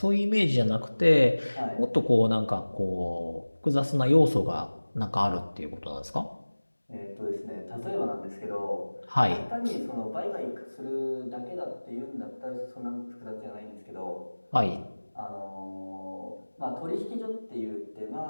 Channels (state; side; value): inverted; both; correlation -1.00